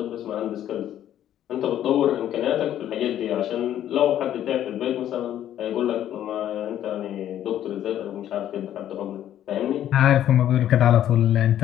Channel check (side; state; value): right; quieter; 11.4 dB